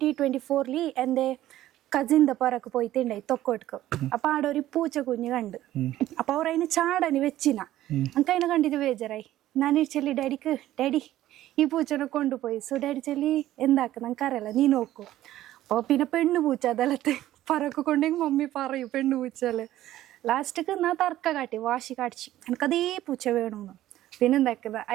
എൻ്റെ കസിൻ്റെ പുറക്ക് പോയിട്ടുണ്ടായി തൊക്കോട്ക്ക്. അപ്പം ആടെ ഒരു പൂച്ച കുഞ്ഞ് കണ്ട്. അപ്പം അവർ അതിന് ചാടന് വെച്ചിന. എനിക്ക് അതിനെ കണ്ടിട്ട് ബേജാറായി. ഞാൻ ചെല്ലി ഡാഡി ഈ പൂച്ചനെ കൊണ്ടുപോയി. സോ ഡാഡി ചെല്ലി എന്താക്കുന്ന എനിക്കറിയില്ല, നീ നോക്കൂ. അപ്പോൾ പിന്നെ പെണ്ണു പൂച്ച അതെല്ലാത്തെ പറക്ക് കൊണ്ടെങ്കിൽ മമ്മി പറയൂ പെണ്ണു പൂച്ചല്ലേ. ലാസ്റ്റക്ക് ഞാൻ തർക്ക കാട്ടി വാശി കാണിച്ചു എനിക്കതേ പൂച്ച വേണമെന്ന്. പിന്നെ എന്താക്കുന്നത്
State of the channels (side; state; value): left; quieter; 14.0 dB